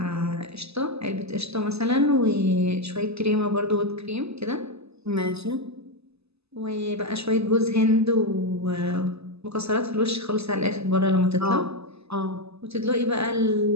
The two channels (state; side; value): late; left; 0.79 ms